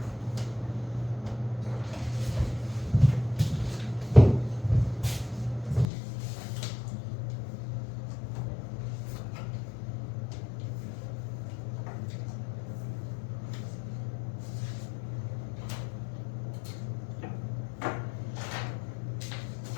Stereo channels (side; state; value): right; drops out; at 5.9 s